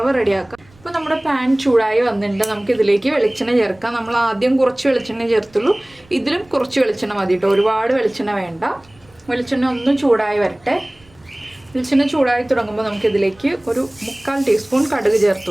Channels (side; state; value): right; noise; rumble, 29 dB below the sound